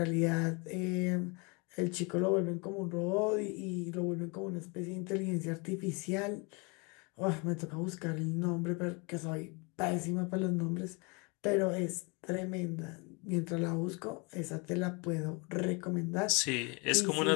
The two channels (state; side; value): quieter; right; 30.3 dB